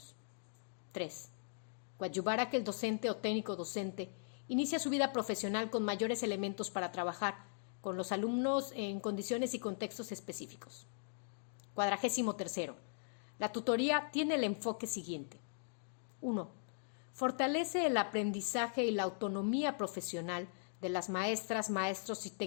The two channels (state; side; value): silent; right; digital silence